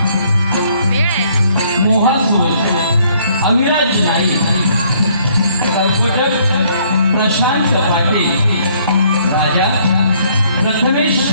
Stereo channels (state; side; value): inverted; both; correlation -0.64